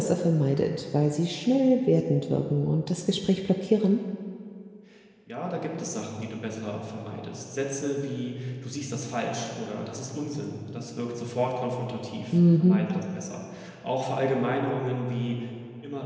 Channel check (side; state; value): both; identical; correlation 1.00